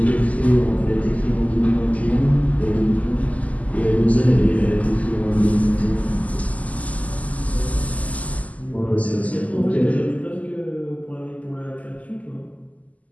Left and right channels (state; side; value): late; right; 0.073 ms